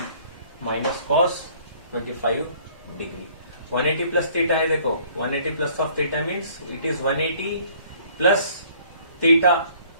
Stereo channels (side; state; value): both; inverted; correlation -0.58